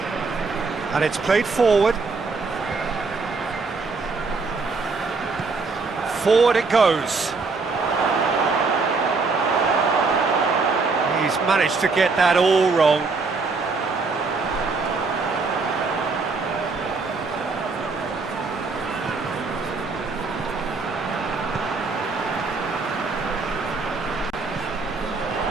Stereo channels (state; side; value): quieter; left; 4.2 dB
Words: and it's played forward. Forward it goes. He's managed to get that all wrong.